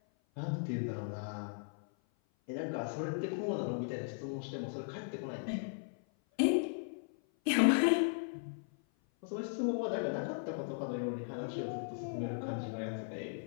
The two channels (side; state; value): right; silent; 53 dB below the other